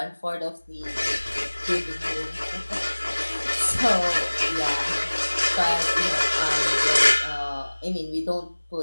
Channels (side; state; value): both; inverted; correlation -1.00